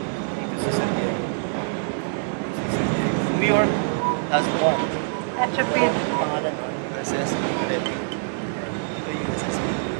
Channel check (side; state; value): left; silent; 62 dB below the other